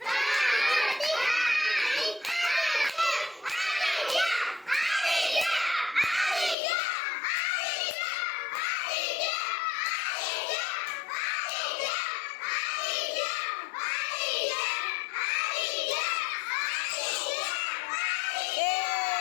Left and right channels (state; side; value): drops out; right; at 6.6 s